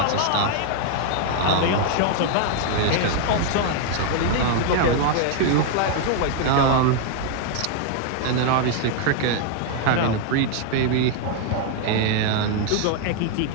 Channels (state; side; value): different; both; correlation 0.00